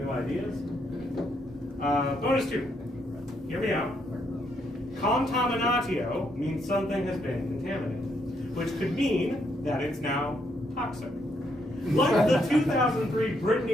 ideas. Bonus 2. Hear me out. Contaminatio means something has been contaminated, which could mean that it's now toxic. Like the 2003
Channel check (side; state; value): both; normal; correlation 0.75